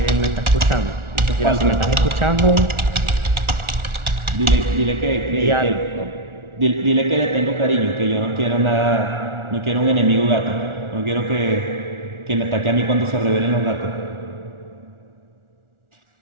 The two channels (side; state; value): left; late; 1.4 ms